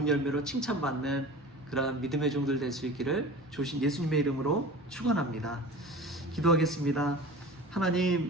열매로 칭찬받는 그러한 믿음의 종들 될 수 있기를 주신 예수님의 이름으로 축원합니다. 기도하겠습니다.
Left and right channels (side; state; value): both; normal; correlation 0.37